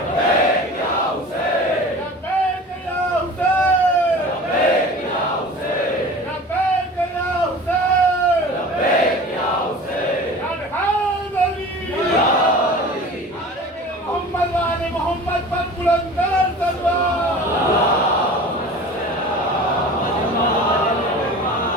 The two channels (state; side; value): normal; both; correlation 0.39